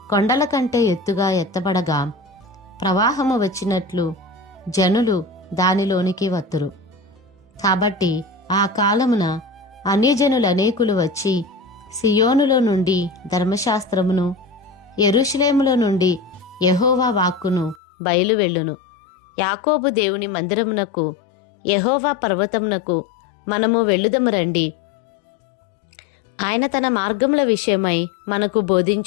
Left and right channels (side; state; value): right; drops out; at 17.8 s